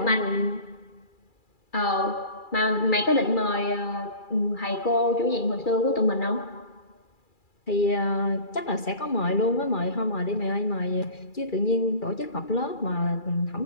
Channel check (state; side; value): late; right; 2.3 ms